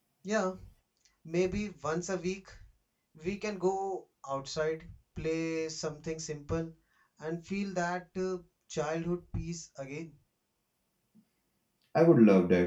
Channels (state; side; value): identical; both; correlation 1.00